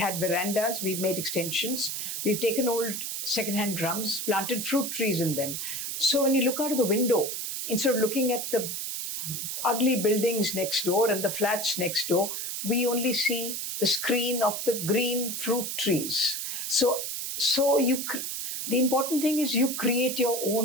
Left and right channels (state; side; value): noise; right; hiss, 4 dB below the sound